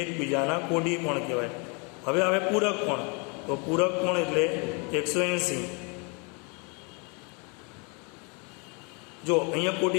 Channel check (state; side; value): quieter; right; 33.0 dB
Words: એકબીજાના કોટી કોણ કહેવાય. હવે પૂરક કોણ. તો પૂરક કોણ એટલે 180. જો અહીંયા